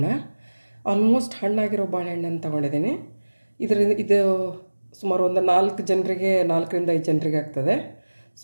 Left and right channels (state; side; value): inverted; both; correlation -1.00